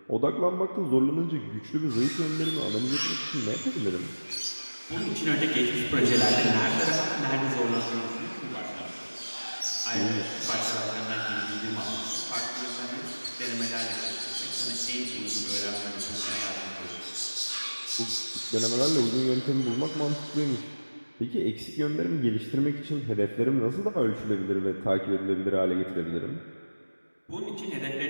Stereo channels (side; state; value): both; inverted; correlation -1.00